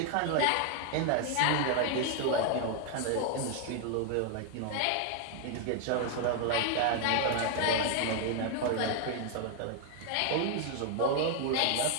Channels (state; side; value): different; both; correlation 0.00